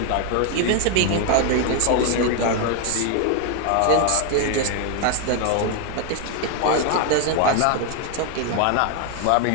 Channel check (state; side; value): different; both; correlation 0.01